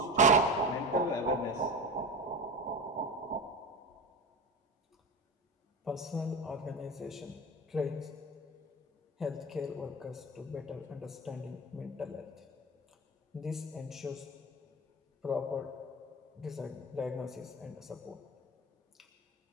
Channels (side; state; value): both; normal; correlation 0.26